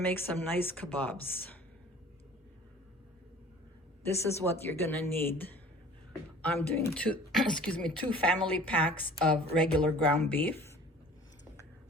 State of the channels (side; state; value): both; normal; correlation 0.47